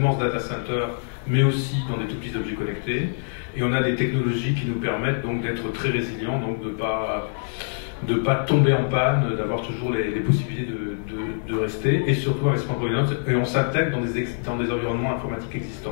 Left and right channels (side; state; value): right; silent; digital silence